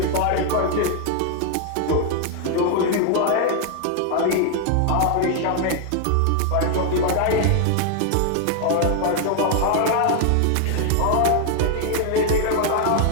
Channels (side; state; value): both; different; correlation 0.00